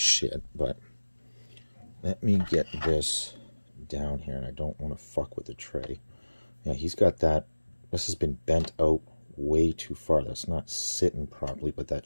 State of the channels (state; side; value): inverted; both; correlation -1.00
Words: but let me get this down here, and I don't want to fuck with the tray. Yeah, he's got that. This has been bent out way too far. That's not sitting properly, but that